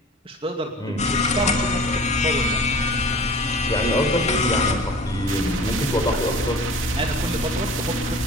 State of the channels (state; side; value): normal; both; correlation 0.42